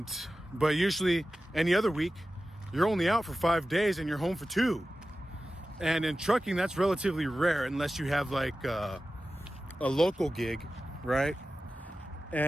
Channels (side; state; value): both; normal; correlation 0.94